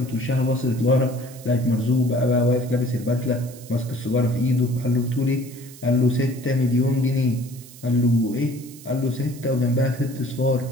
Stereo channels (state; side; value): noise; right; hiss, 19 dB below the sound